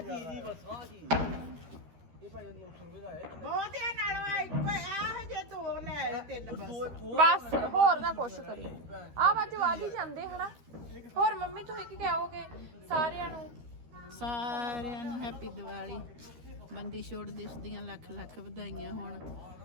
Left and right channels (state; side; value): late; left; 13 ms